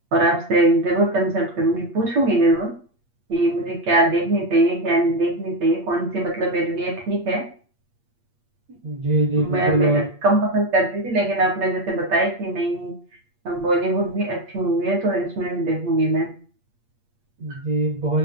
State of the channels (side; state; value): left; late; 8.5 ms